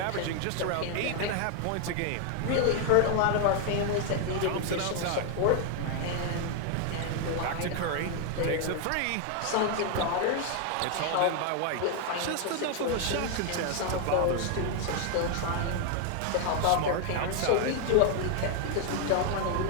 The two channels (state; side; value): different; both; correlation 0.00